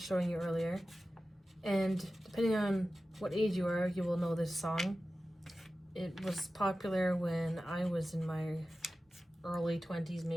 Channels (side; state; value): both; normal; correlation 0.94